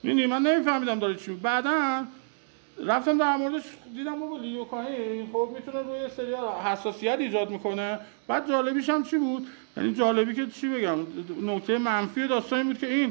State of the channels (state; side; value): silent; left; 59 dB below the other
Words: می‌بینی من نمیفهمیدم داره چی. بعداً رفتم در موردش دیدم بابا لیدوکاین خب میتونه روی سری حساسیت ایجاد میکنه. بعد جالبیش هم چی بود؟ یعنی جالبی که چی بگم نکته منفی داستان این بود که